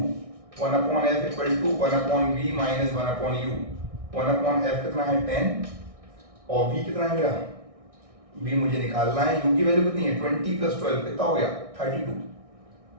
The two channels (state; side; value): late; left; 1.6 ms